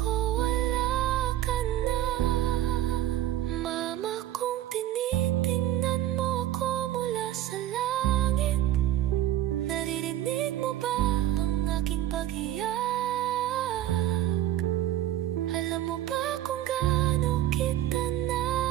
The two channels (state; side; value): quieter; left; 13.0 dB